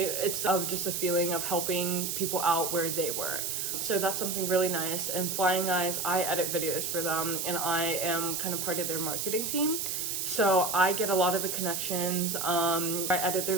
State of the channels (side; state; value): right; noise; hiss, 2 dB below the sound